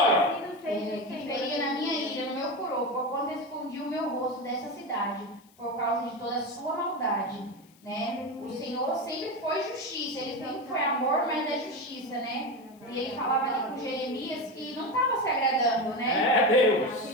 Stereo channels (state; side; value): noise; left; hiss, 29 dB below the sound